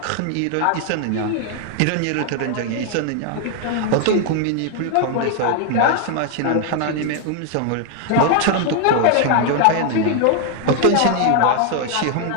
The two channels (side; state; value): both; different; correlation 0.00